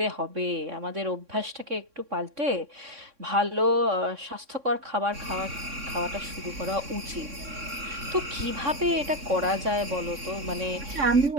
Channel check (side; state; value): left; late; 3.6 ms